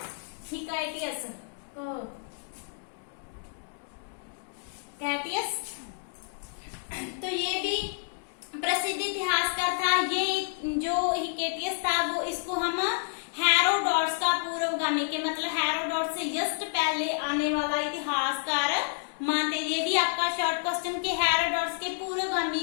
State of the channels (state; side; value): silent; right; digital silence